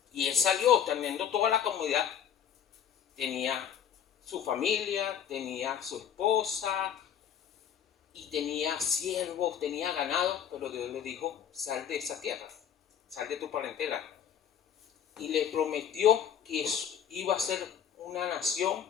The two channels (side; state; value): right; quieter; 8.7 dB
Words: Y él salió teniendo toda la comodidad. Tenía su familia, tenía su esposa y tenía siervos, tenía ganado, pero Dios le dijo: sal de esa tierra, sal de tu parentela. Y le prometió que iba a ser una nación